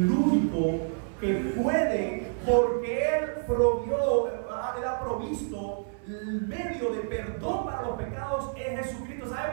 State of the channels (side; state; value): left; silent; 59 dB below the other